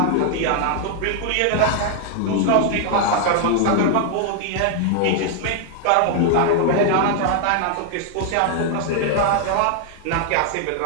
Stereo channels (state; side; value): different; both; correlation 0.00